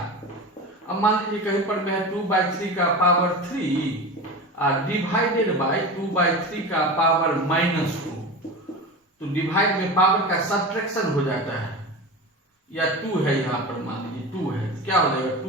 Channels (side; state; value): both; normal; correlation 0.28